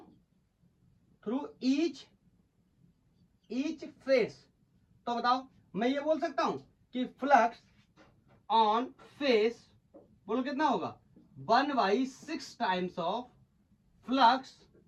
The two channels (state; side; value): identical; both; correlation 1.00